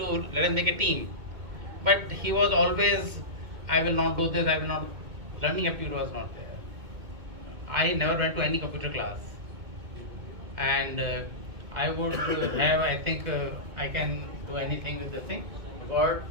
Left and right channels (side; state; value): left; late; 2.2 ms